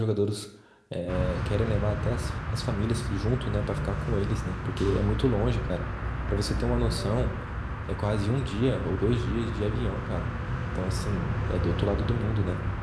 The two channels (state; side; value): identical; both; correlation 1.00